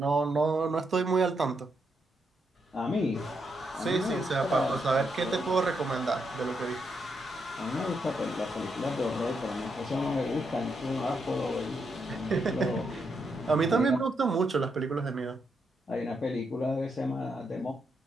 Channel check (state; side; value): normal; both; correlation 0.80